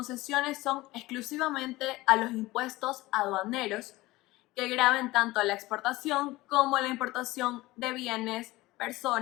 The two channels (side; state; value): right; quieter; 19.3 dB